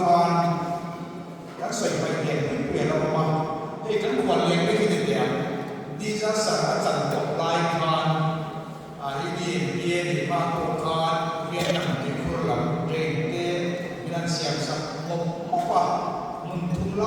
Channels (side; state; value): both; identical; correlation 1.00